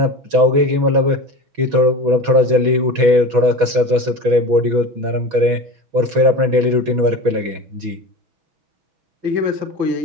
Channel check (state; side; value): late; left; 6.3 ms